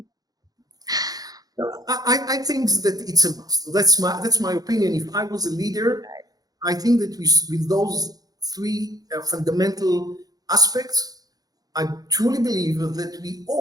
I think that it's a must. That's my opinion. If I was a leader, I think that with those three fundamental aspects, I truly believe that we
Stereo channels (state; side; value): late; left; 0.18 ms